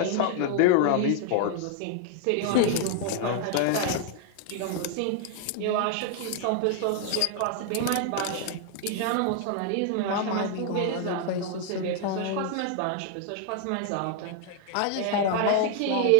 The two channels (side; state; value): both; different; correlation 0.00